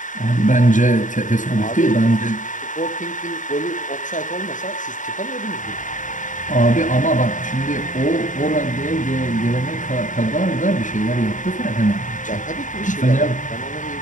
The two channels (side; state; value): right; late; 0.37 ms